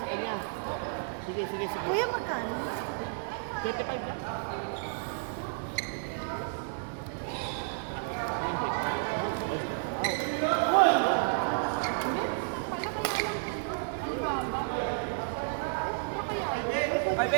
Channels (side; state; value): left; silent; digital silence